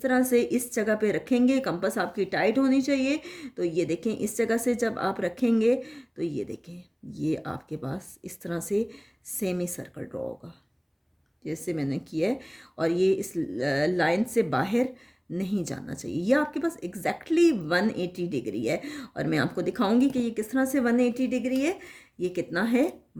तरह से इस जगह पे रखेंगे। कंपास आपकी टाइट होनी चाहिए। तो ये देखें, इस जगह से जब आप रखेंगे तो ये देखें, ये आपके पास इस तरह से सेमी सर्कल ड्रॉ होगा जैसे मैंने किया है, और ये इस लाइन से बाहर नहीं जाना चाहिए। ये आपके पास एग्जैक्टली 180 डिग्री है, और मैं आपको दिखाऊंगी कि ये किस तरह से 180 डिग्री है। ये कितना है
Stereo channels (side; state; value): both; identical; correlation 1.00